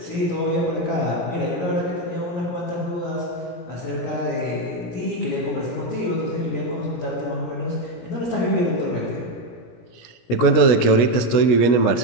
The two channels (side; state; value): right; late; 17 ms